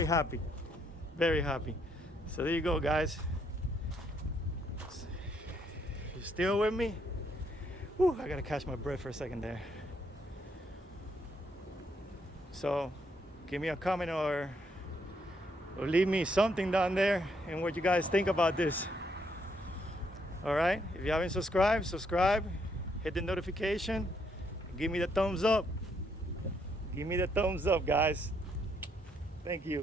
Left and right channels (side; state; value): both; normal; correlation 0.73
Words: happy, very happy. So there you go, guys. You still with me? Whew, I gotta catch my breath for a second there. So give me a comment or leave me something down there and what you guys think about this. All right, if you haven't subscribed, subscribe, hit the notification, give me the thumbs up. Give me the thumbs up, guys. Thank